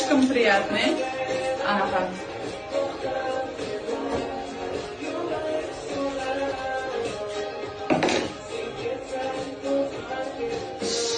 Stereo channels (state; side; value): identical; both; correlation 1.00